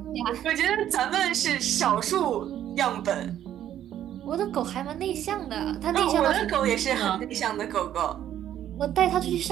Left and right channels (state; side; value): quieter; left; 11.2 dB